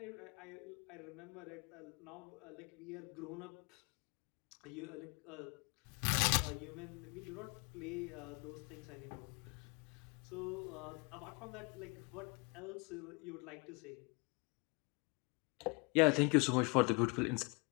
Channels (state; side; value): quieter; right; 30.7 dB